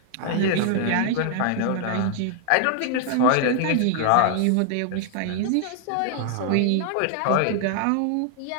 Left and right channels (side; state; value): both; different; correlation 0.00